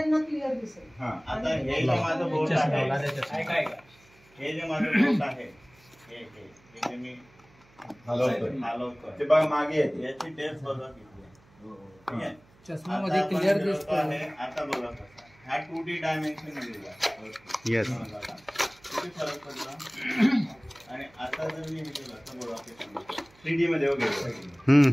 क्लिअर दिसेल. आता हे जे माझं बोट आहे, हे जे माझं बोट आहे हे जे मी हलवतोय ते बघा मागे येते. याची टेस्ट बघा किती ठीक आहे. चष्मामध्ये क्लिअर दिसतं. आता बघा कसा हा 2D डायमेन्शन दिलेला येस. किती फरक पडला. आणि आता जर मी हे केलं तर बघा 3D मध्ये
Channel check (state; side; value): noise; right; hum, 29 dB below the sound